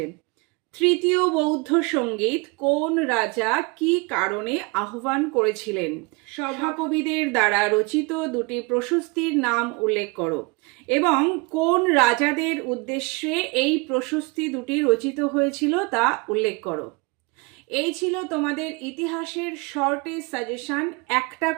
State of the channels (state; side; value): quieter; left; 27.9 dB